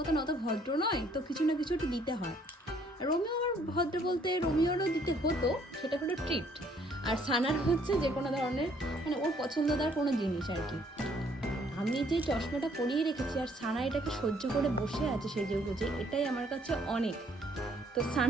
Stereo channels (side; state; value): both; normal; correlation 0.64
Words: অত ভদ্র নয়, তো কিছু না কিছু একটু দিতে হয়। রোমিও আমার ভদ্র বলতে রোমিওরও দিতে হতো, সেটা হলো ট্রিট। আর সানার হচ্ছে যে কোনো ধরনের মানে ওর পছন্দদার কোনো জিনিস আর কি। আমি যে চশমাটা পরিয়ে রেখেছি আর সানা এটাকে সহ্য করে বসে আছে সেজে গুজে, এটাই আমার কাছে অনেক। তো